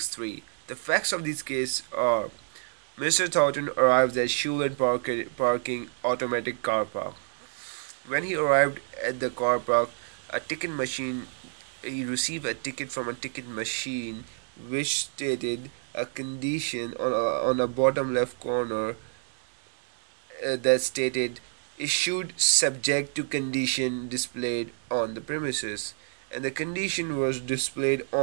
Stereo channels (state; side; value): silent; left; 57 dB below the other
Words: The facts of this case are Mr. Thornton arrives at Shoe Lane Parking Automatic Car Park. When he arrived at the car park, a ticket machine he received a ticket from a ticket machine which stated a condition on a bottom left corner that stated issued subject to condition displayed on the premises, and the condition was displayed